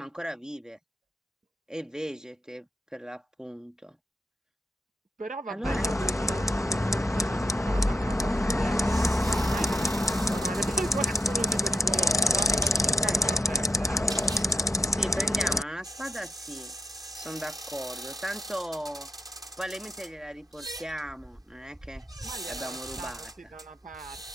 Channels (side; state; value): both; normal; correlation 0.78